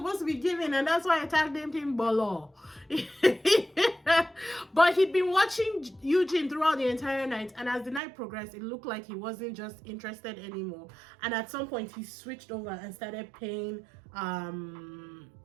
to be giving, and that's why I tagged him Bolo. But he'd been watching Eugene throughout the entire night, and as the night progressed, it looked like he wasn't just interested anymore. And at some point he switched over and started paying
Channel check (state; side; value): drops out; left; at 8.0 s